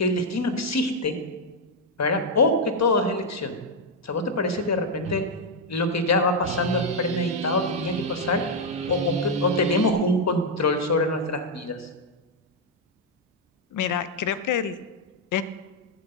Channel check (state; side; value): normal; both; correlation 0.00